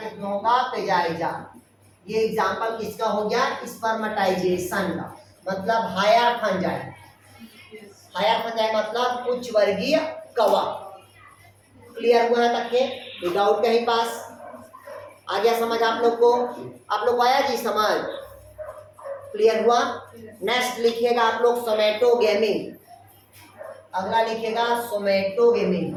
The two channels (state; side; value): identical; both; correlation 1.00